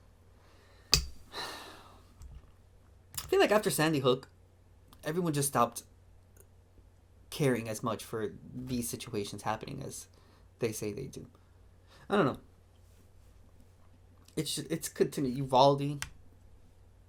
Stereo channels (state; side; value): identical; both; correlation 1.00